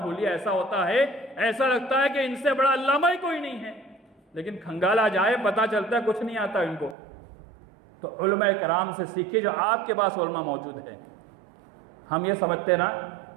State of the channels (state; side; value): drops out; left; at 7.0 s